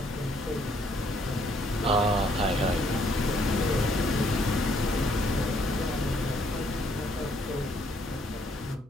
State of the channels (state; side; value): normal; both; correlation 0.68